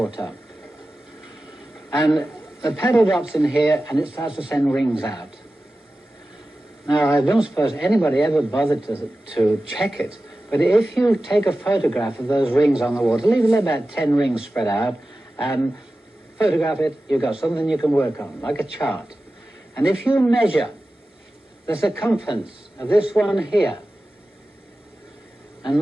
And the pebble drops in here and it starts to send rings out. Now, I don't suppose anybody ever bothered to check it, but if you take a photograph of those rings on the water, leave about 10 rings spread out, and photograph it, you've got something you can work on, like a chart. And if you measure the circumference of this one here,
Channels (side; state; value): both; normal; correlation 0.95